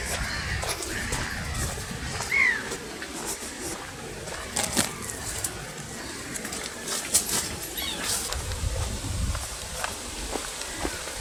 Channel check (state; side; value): identical; both; correlation 1.00